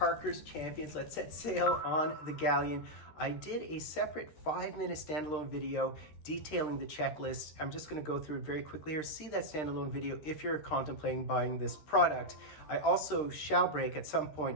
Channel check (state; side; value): late; right; 13 ms